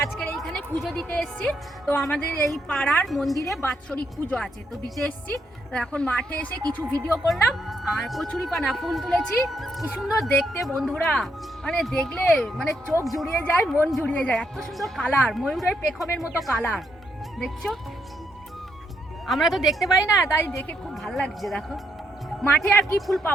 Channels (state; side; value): normal; both; correlation 0.76